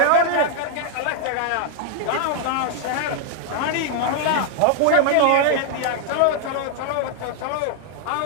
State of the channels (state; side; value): different; both; correlation 0.00